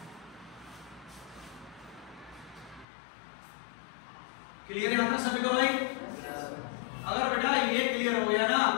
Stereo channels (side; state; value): right; drops out; at 2.9 s